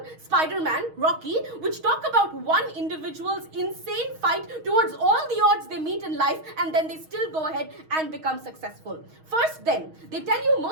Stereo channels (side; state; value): left; late; 6.4 ms